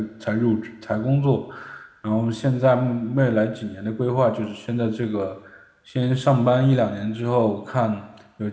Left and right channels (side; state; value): both; identical; correlation 1.00